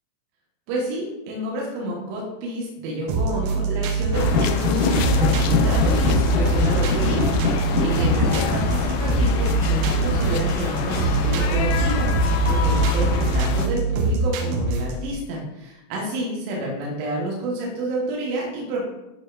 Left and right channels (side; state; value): left; late; 31 ms